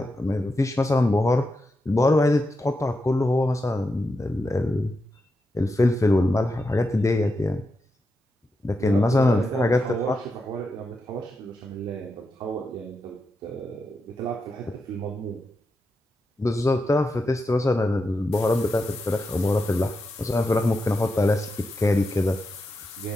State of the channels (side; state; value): both; normal; correlation 0.87